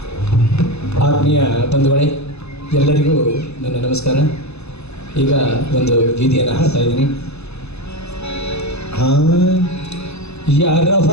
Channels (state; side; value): late; right; 0.80 ms